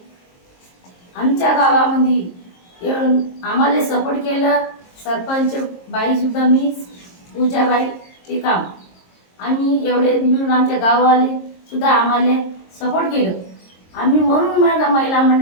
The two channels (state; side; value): late; right; 22 ms